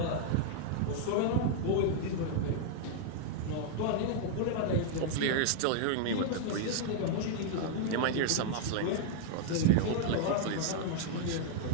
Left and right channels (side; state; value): both; different; correlation -0.01